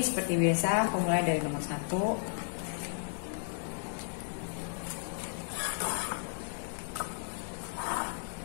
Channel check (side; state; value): right; silent; digital silence